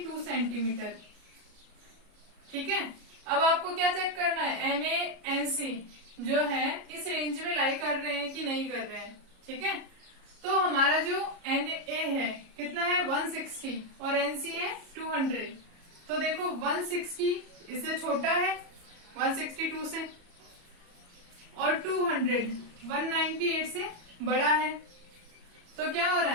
सेंटीमीटर. ठीक है, अब आपको क्या चेक करना है, NaNC जो है इस रेंज में लाई कर रहे हैं कि नहीं कर रहे हैं. ठीक है, तो हमारा जो Na है कितना है 160 और NC है 200. तो देखो 160 इससे छोटा है 162 से और 200 198 से बड़ा है. तो क्या हो रहा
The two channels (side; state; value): left; late; 34 ms